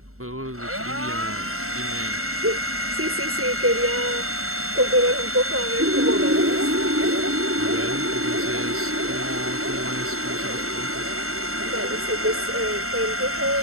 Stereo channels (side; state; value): left; late; 0.63 ms